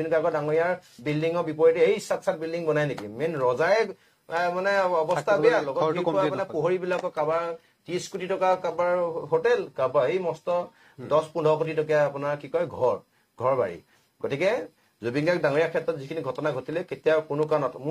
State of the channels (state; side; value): identical; both; correlation 1.00